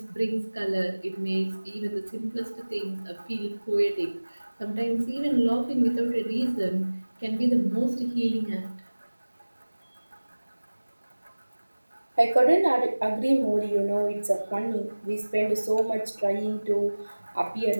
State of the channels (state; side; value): inverted; both; correlation -1.00